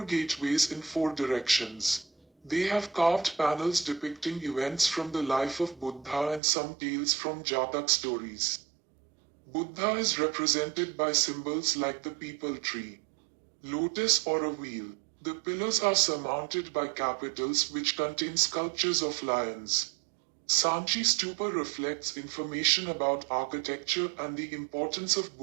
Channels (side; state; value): left; drops out; at 6.4 s